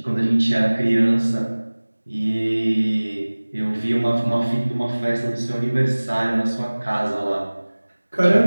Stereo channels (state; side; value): inverted; both; correlation -1.00